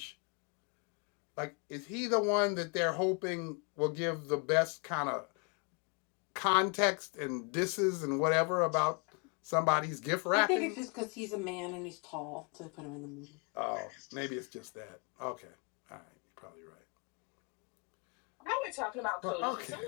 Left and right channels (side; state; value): right; quieter; 34.6 dB